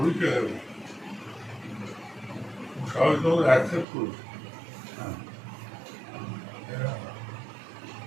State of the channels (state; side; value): drops out; left; at 3.9 s